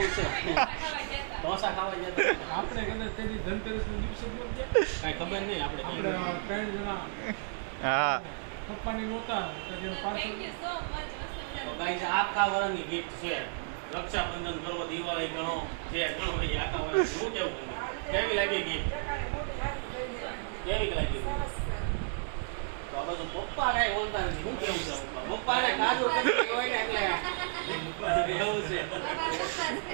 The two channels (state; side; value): silent; left; 56 dB below the other